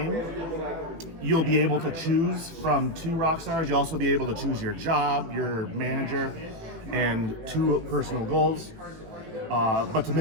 you'll be able to choose from 2 rock stars. You'll also be able to choose your job, your manager, and 2 personal goals. But to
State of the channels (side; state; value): left; late; 18 ms